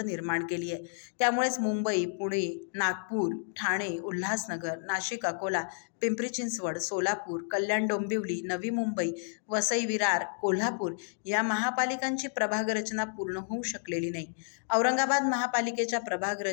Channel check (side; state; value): right; silent; digital silence